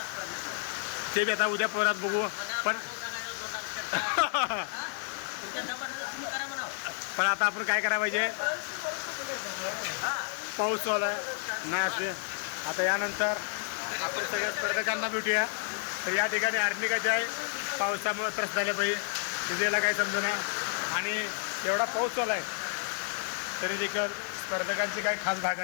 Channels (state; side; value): silent; right; digital silence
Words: स्पर्धेचं. ते बी आता उद्या परत बघू. पण सांगायचं 2 डान्स करता तुमच्या दमानं तुम्ही करा म्हणा. पण आता आपण काय करायला पाहिजे पाऊस चालू आहे नाही असे. आता यानंतर आपण सगळ्या स्पर्धकांना भेटूया. तर या ठिकाणी आर्निकाचे आहे पावसामुळे त्रस्त झाले पाहिजे तिथेला काही समजेना आणि एवढा पाऊस चालू आहे तरी देखील स्पर्धकांची काही खास